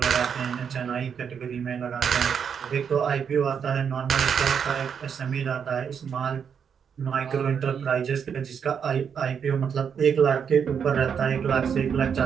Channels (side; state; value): left; quieter; 7.2 dB